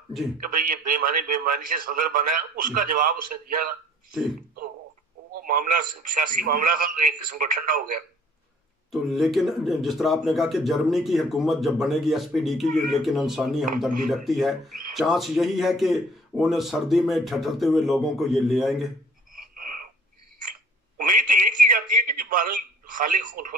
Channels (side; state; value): both; normal; correlation 0.54